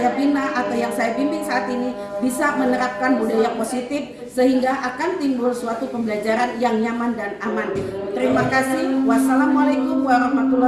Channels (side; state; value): both; identical; correlation 1.00